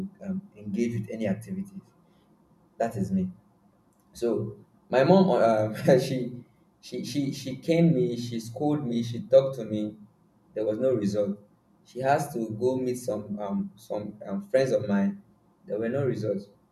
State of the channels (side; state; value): both; identical; correlation 1.00